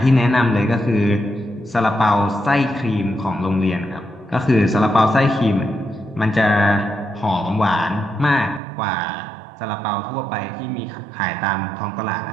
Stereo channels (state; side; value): drops out; left; at 8.6 s